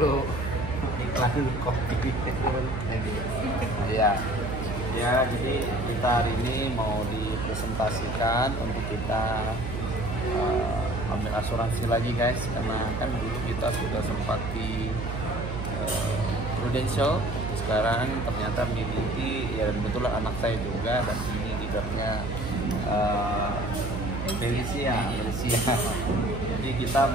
iklan kopi. Iya. Ya, jadi kita hari ini mau dipresentasikan untuk kita ambil asuransi lagi guys, karena kan dulu kita sudah sempat di Prudential, sekarang ternyata miliki ya, kebetulan anak saya juga, dan ini leadernya Felicia. Jadi kita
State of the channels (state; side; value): noise; right; hum, 6 dB below the sound